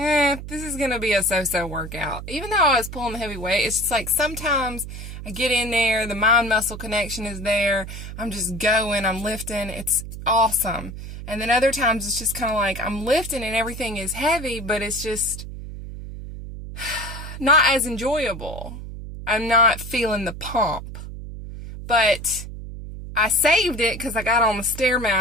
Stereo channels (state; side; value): noise; right; hum, 10 dB below the sound